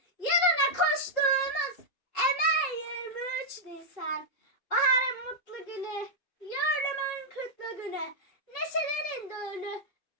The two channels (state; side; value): late; right; 2.7 ms